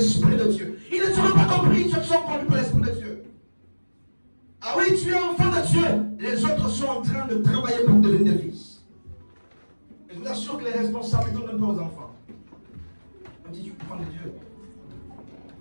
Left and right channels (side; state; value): both; inverted; correlation -1.00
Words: de Dieu. Ils ne seront pas compris, ceux qui sont conduits par l'Esprit de Dieu. Ah oui, tu es enfant de Dieu. Les autres sont en train de travailler pour devenir des fils. Et je vous assure que les responsabilités ne donnent pas aux enfants. On dit, tu es enfant de Dieu.